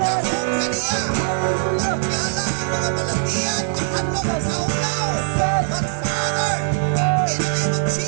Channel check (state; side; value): silent; left; digital silence